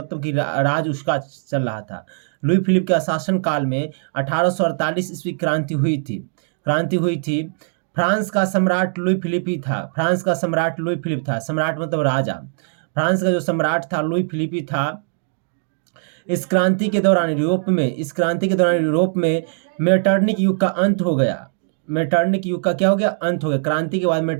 कि राज उसका चल रहा था। लुई फिलिप के शासनकाल में 1848 ईस्वी क्रांति हुई थी। फ्रांस का सम्राट लुई फिलिप ही था। सम्राट मतलब राजा। फ्रांस का जो सम्राट था लुई फिलिप ही था। इस क्रांति के दौरान यूरोप में मेटरनिक युग का अंत हो गया। मेटरनिक युग का क्या हो गया? अंत हो गया। क्रांति के बाद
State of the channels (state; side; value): silent; left; digital silence